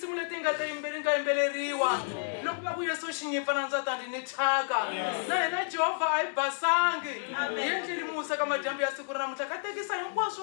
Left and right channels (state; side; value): silent; right; digital silence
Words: leti nga yimbeleriwa. Loko va ku Yesu xinyipa na ndzatani ni thaka na hina Jehovah ai basangi yendlini musa ka majambu ya siku ra namuntlha ka tekisa